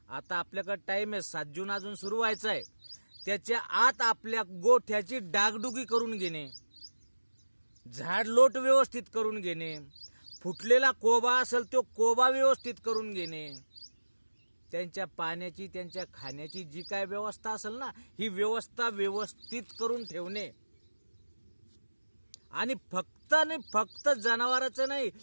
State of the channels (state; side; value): inverted; both; correlation -1.00